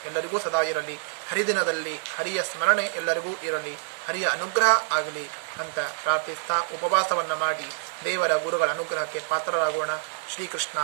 ಎಲ್ಲರಿಗೂ ಸದಾ ಇರಲಿ. ಹರಿದಿನದಲ್ಲಿ ಹರಿಯ ಸ್ಮರಣೆ ಎಲ್ಲರಿಗೂ ಇರಲಿ, ಹರಿಯ ಅನುಗ್ರಹ ಆಗಲಿ ಅಂತ ಪ್ರಾರ್ಥಿಸ್ತಾ ಉಪವಾಸವನ್ನು ಮಾಡಿ ದೇವರ ಗುರುಗಳ ಅನುಗ್ರಹಕ್ಕೆ ಪಾತ್ರರಾಗೋಣ.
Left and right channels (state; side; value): silent; left; digital silence